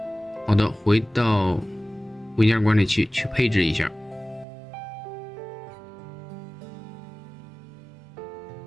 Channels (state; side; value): drops out; left; at 4.5 s